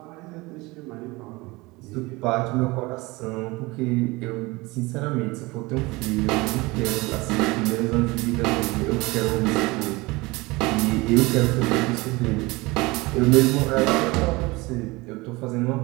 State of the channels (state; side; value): quieter; left; 22.9 dB